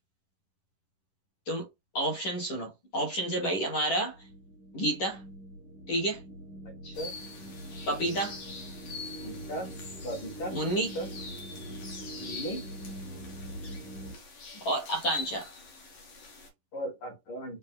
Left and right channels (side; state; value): right; late; 11 ms